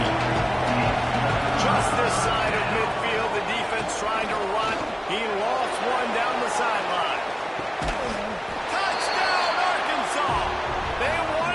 Just this side of midfield, the defense trying to run. He lost one down the sideline. Touchdown, Arkansas! They won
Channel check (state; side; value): identical; both; correlation 1.00